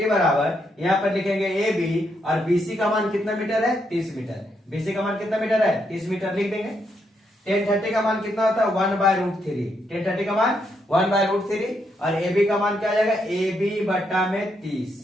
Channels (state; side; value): normal; both; correlation 0.78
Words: बराबर यहाँ पर लिखेंगे ए बी और बीसी का मान कितना मीटर है, 30 मीटर। बीसी का मान कितना मीटर है, 30 मीटर लिख देंगे। 1030 का मान कितना होता है, 1/√3। 1030 का मान 1/√3 और ए बी का मान क्या आ जाएगा, ए बी बटा में